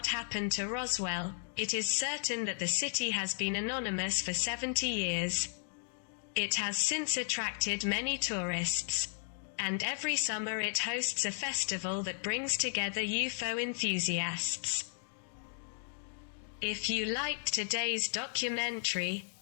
happened to Roswell, it is certain that the city has been anonymous for 70 years. It has since attracted many tourists, and every summer it hosts a festival that brings together UFO enthusiasts. If you liked today's documentary,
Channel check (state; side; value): silent; right; digital silence